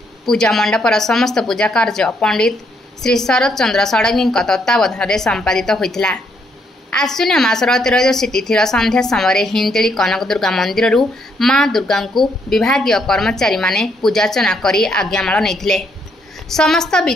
पूजा मंडपर समस्त पूजा कार्य पंडित श्री शरद चंद्र षडंगी तत्वावधान में संपादित होता। आश्विन मासर त्रयोदशी तिथिर संध्या समय हिंजिली कनक दुर्गा मंदिर मां दुर्गा को विभागीय कर्मचारी माने पूजार्चना कर आज्ञामाल नहीं। समस्त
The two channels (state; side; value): normal; both; correlation 0.73